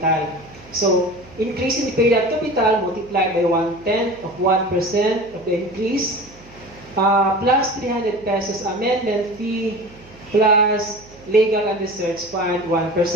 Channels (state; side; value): noise; right; hum, 23 dB below the sound